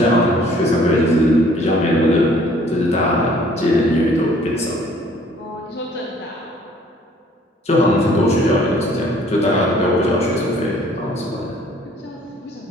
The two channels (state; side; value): normal; both; correlation 0.57